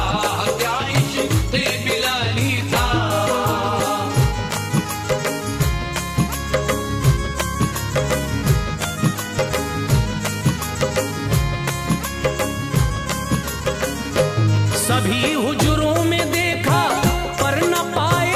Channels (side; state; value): both; identical; correlation 1.00